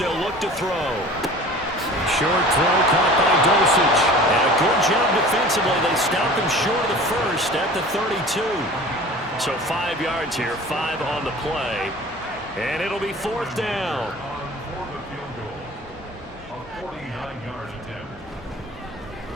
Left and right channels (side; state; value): both; normal; correlation 0.42